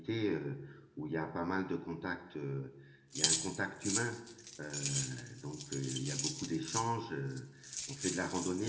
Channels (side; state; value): both; identical; correlation 1.00